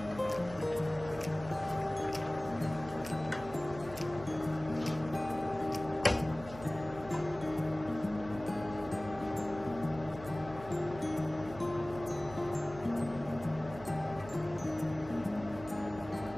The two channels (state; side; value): noise; right; hum, 15 dB below the sound